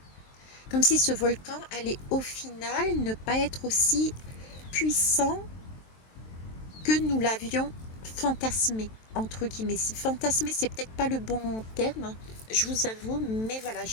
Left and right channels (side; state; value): right; late; 23 ms